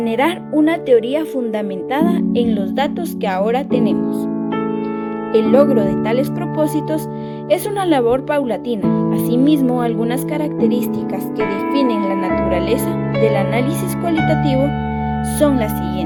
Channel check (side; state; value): both; identical; correlation 1.00